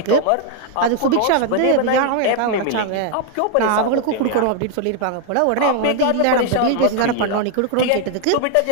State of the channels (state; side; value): different; both; correlation 0.00